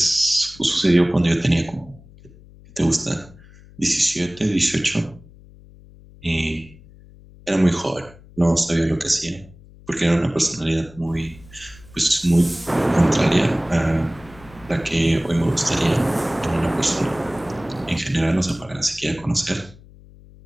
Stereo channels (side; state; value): left; noise; hum, 23 dB below the sound